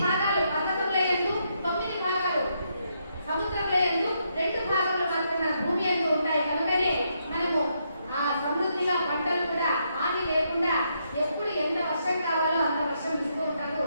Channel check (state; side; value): inverted; both; correlation -0.78